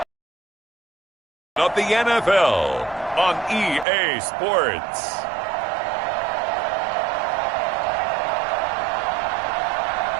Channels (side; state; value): left; drops out; at 3.9 s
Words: of the NFL on EA Sports.